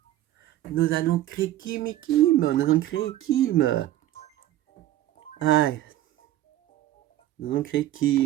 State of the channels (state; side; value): quieter; left; 14.1 dB